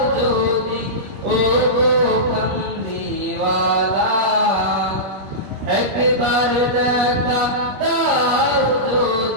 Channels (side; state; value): left; late; 21 ms